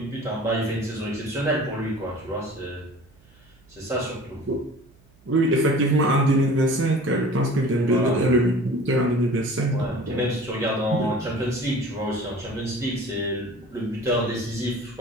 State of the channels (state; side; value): noise; right; hum, 30 dB below the sound